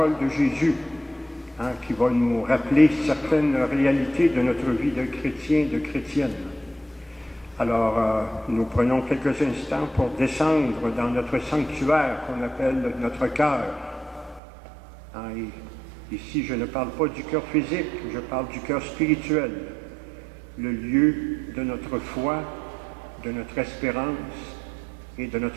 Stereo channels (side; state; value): left; drops out; at 14.4 s